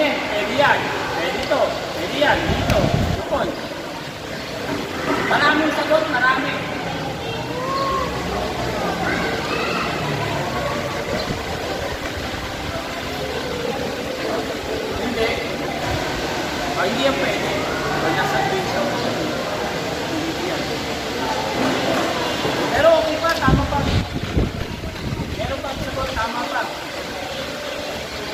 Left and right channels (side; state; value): both; identical; correlation 1.00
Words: Pwede yan. Pwede ito. Pwede yan. Dito. Lupon. Maraming sagot. Marami. Hindi. Hindi yan pwede. Pag nasa video. Hindi yan. Pero okay pa. Tama pa. Meron pa sagot. Tama pa.